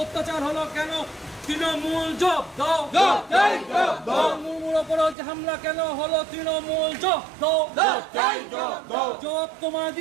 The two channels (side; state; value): left; drops out; at 5.2 s